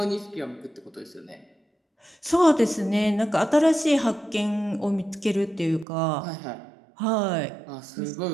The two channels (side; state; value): left; drops out; at 5.9 s